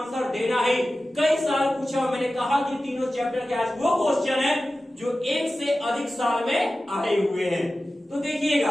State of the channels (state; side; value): normal; both; correlation 0.95